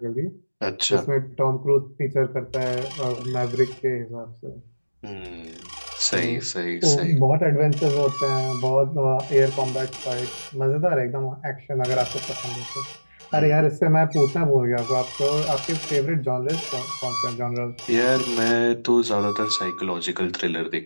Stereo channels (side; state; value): both; inverted; correlation -1.00